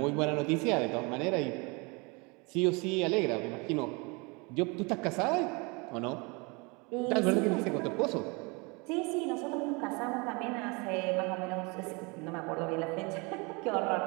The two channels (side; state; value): left; quieter; 28.9 dB